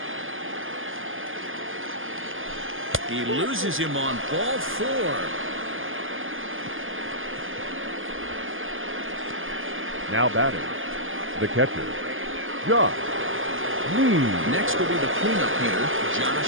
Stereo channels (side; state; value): left; late; 0.59 ms